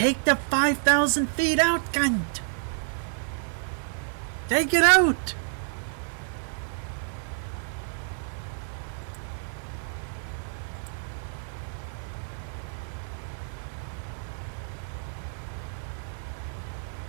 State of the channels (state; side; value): silent; left; digital silence